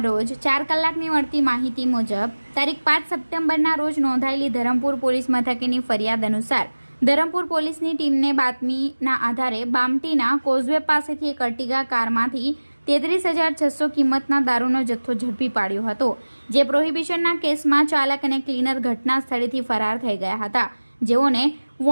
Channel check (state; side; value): inverted; both; correlation -1.00